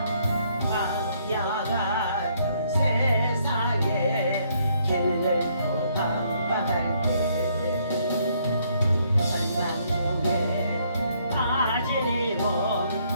광야 같은 세상에 길을 또 방황할 때 절망중에 빠진 이 몸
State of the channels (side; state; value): both; inverted; correlation -0.69